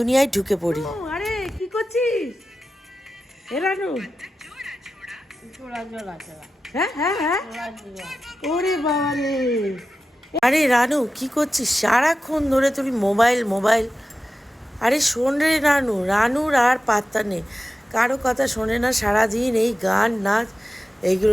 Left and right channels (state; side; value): normal; both; correlation 0.93